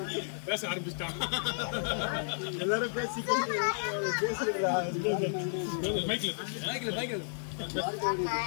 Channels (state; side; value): silent; right; digital silence